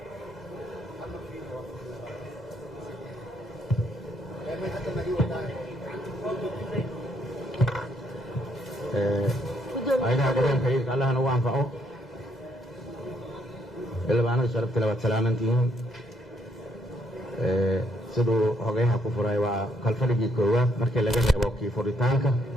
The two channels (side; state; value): both; normal; correlation 0.72